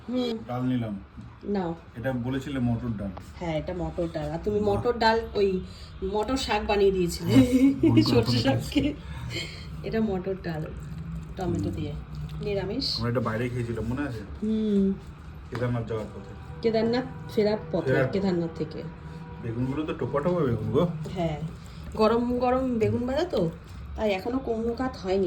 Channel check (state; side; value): identical; both; correlation 1.00